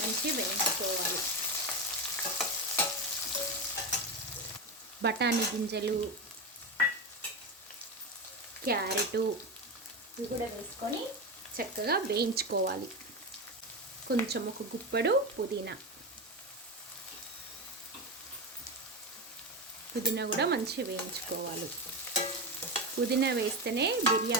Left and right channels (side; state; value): both; normal; correlation 0.16